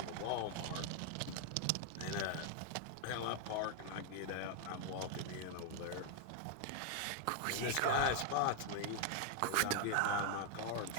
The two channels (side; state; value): both; different; correlation 0.00